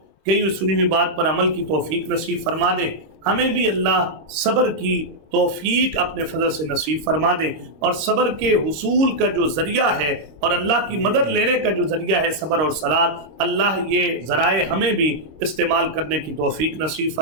کئی سنی ہوئی بات پر عمل کی توفیق نصیب فرما دے. ہمیں بھی اللہ صبر کی توفیق اپنے فضل سے نصیب فرما دے، اور صبر کے حصول کا جو ذریعہ ہے اور اللہ کی مدد لینے کا جو ذریعہ ہے صبر اور صلات، اللہ یہ ذرائع ہمیں بھی استعمال کرنے کی توفیق نصیب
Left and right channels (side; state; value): left; late; 26 ms